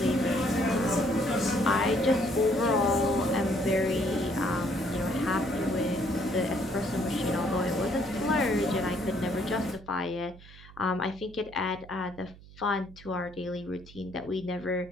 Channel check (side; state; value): right; noise; hum, 20 dB below the sound